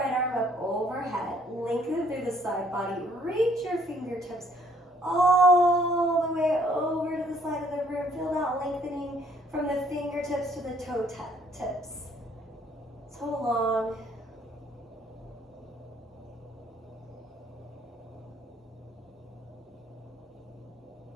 arm up overhead. Lengthen through the side body. Reach your fingertips all the way over to the side of the room. Feel that lengthening from the fingertips to the toe tips. So long.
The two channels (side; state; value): both; normal; correlation 0.64